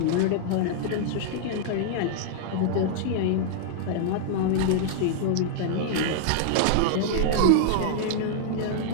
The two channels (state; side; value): different; both; correlation -0.01